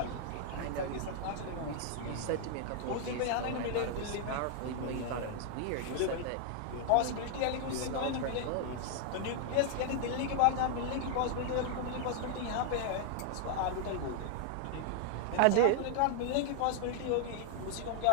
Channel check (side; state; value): both; different; correlation 0.00